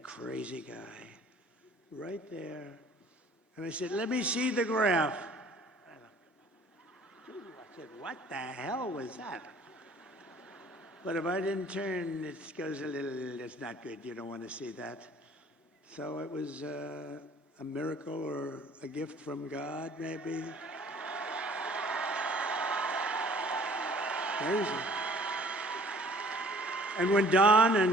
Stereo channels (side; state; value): both; normal; correlation 0.53